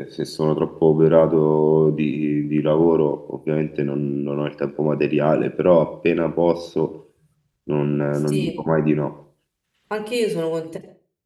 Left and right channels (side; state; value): both; identical; correlation 1.00